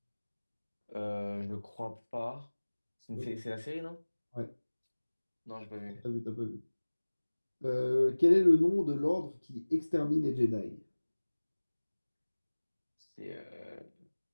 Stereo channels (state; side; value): inverted; both; correlation -1.00